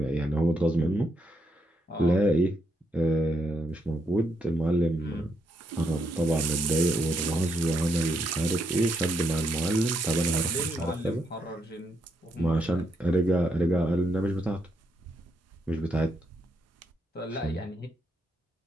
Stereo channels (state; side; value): normal; both; correlation 0.78